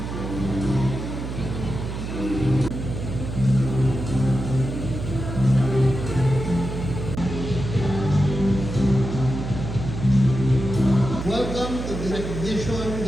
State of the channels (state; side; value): noise; right; hum, 6 dB below the sound